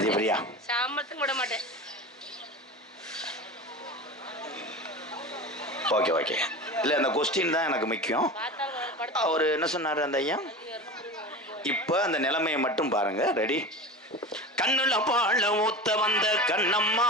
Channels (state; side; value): normal; both; correlation 0.30